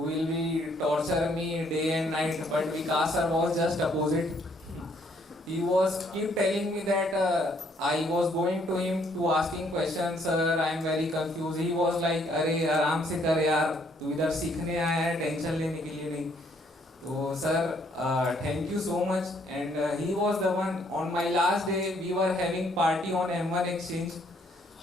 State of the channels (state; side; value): normal; both; correlation 0.67